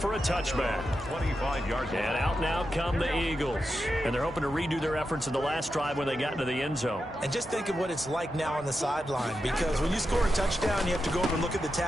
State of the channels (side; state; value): both; normal; correlation 0.88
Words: a touchback. 25 yards. And out now come the Eagles. And they're hoping to redo their efforts in the last drive when they got into the end zone. And just think of what it's like now on the sideline, because when you score a touchdown, you have to go over and look at the